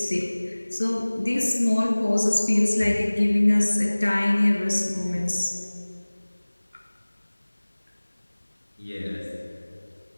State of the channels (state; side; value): inverted; both; correlation -1.00